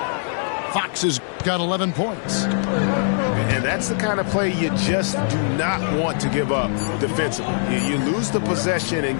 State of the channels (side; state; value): right; silent; digital silence